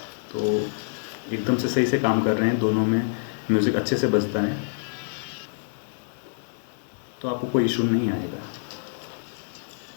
तो एकदम से सही से काम कर रहे हैं, दोनों में म्यूज़िक अच्छे से बजता है, तो आपको कोई इशू नहीं आएगा।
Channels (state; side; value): silent; right; digital silence